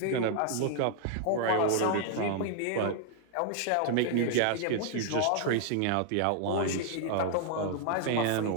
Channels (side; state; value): both; different; correlation 0.00